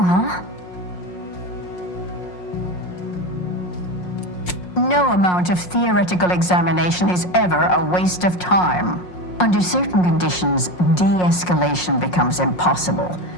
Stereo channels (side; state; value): right; late; 5.5 ms